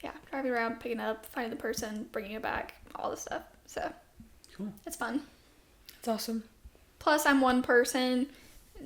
driving around, picking it up, finding the person, bringing it back, all this stuff. So Cool. It's fun. It's awesome. Plus, I'm one person.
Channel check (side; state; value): both; identical; correlation 1.00